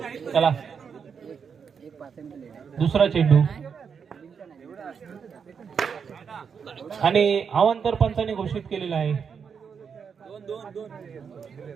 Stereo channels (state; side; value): quieter; left; 6.5 dB